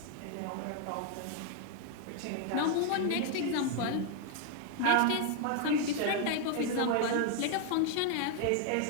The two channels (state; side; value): different; both; correlation 0.00